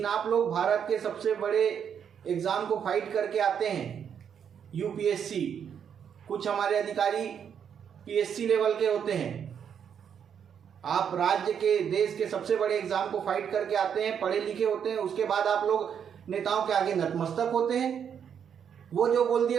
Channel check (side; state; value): left; quieter; 8.0 dB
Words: आप लोग भारत के सबसे बड़े एग्जाम को फाइट करके आते हैं, UPSC। कुछ हमारे अधिकारी PSC लेवल के होते हैं। आप राज्य के, देश के सबसे बड़े एग्जाम को फाइट करके आते हैं, पढ़े लिखे होते हैं, उसके बाद आप लोग नेताओं के आगे नतमस्तक होते हैं। वो जो बोल दिए